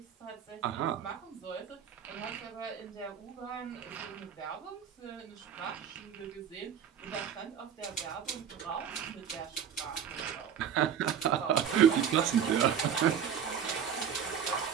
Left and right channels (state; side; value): quieter; left; 8.3 dB